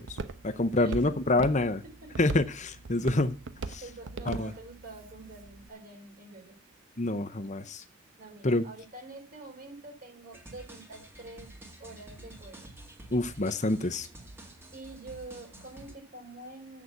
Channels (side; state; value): both; normal; correlation 0.49